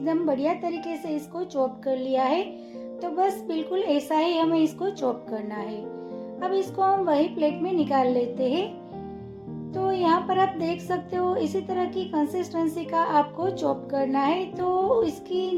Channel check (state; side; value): identical; both; correlation 1.00